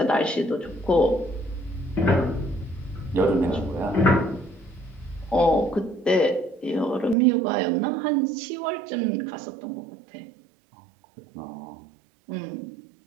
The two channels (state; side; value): drops out; left; at 7.2 s